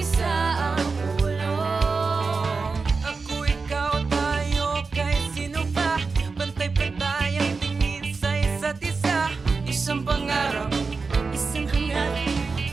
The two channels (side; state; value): left; quieter; 4.4 dB